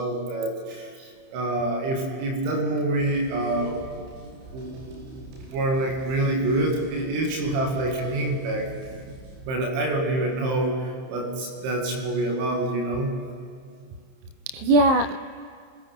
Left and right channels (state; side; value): late; left; 30 ms